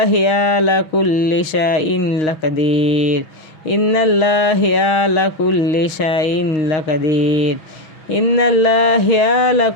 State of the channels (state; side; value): late; right; 6.1 ms